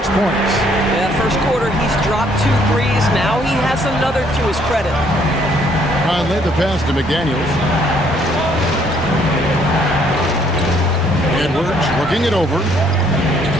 points. Yeah, first quarter, he's dropped 2 threes. Now he has another to his credit. Conley the pass to McDaniels. Edwards looking it over.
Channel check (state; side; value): normal; both; correlation 0.65